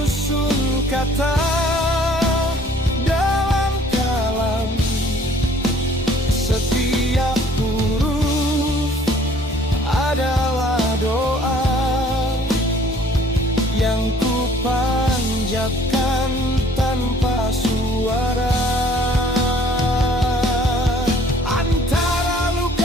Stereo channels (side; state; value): both; normal; correlation 0.56